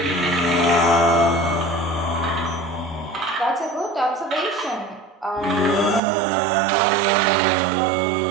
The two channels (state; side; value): drops out; left; at 6.0 s